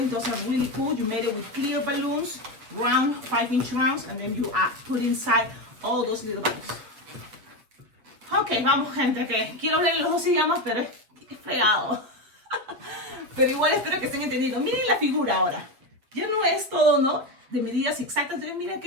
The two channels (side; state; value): left; late; 7.8 ms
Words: Those are really cool. You made it with clear balloons, round 5-inch rounds, and then you put inside all those little bubbles. Ok, vamos gente, que quiero hablar en los dos idiomas, pero es pegado. Pero igual espero que estén entendiendo. Miren la figura ahora. Ya no es todo, ¿no? De medidas exactas. Entonces miren